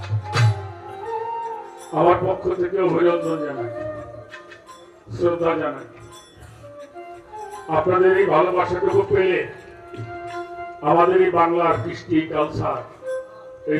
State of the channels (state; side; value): identical; both; correlation 1.00